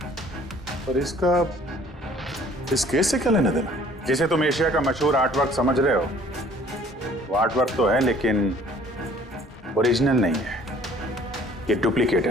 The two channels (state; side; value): normal; both; correlation 0.55